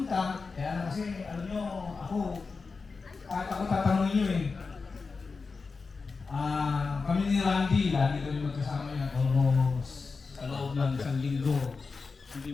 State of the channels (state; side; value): quieter; right; 4.5 dB